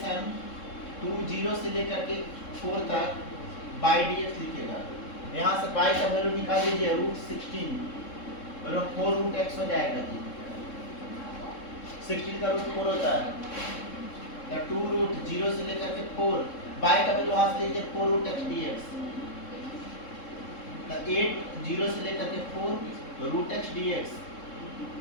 0 से लेकर के 4 तक बाई dx लिखेगा। यहाँ से बाई का वैल्यू निकाल लीजिए √16 और 4 √x हो जाएगा जी। 16 का रूट 4 होता है तो 2 √0 से लेकर के 4 बाई का वैल्यू यहाँ से लीजिए 4 √x dx। तो 8 0 से लेकर के 4 √x dx,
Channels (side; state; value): right; late; 3.7 ms